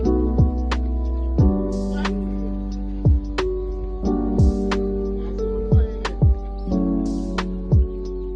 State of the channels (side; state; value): both; identical; correlation 1.00